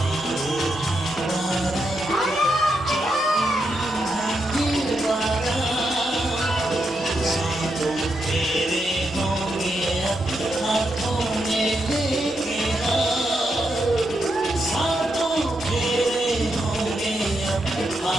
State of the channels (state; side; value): normal; both; correlation 0.83